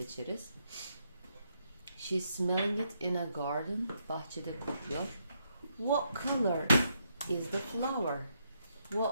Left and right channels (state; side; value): inverted; both; correlation -0.78